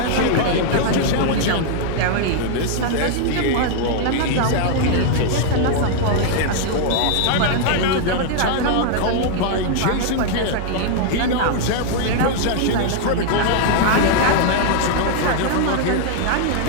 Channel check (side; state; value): both; different; correlation -0.01